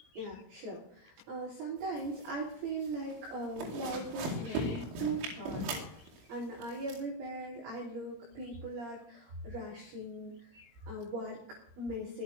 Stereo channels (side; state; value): left; late; 23 ms